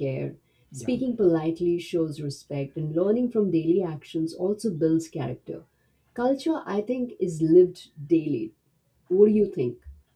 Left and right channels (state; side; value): identical; both; correlation 1.00